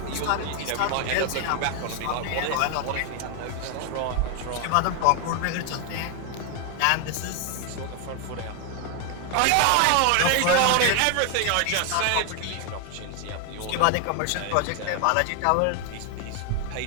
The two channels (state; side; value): different; both; correlation 0.00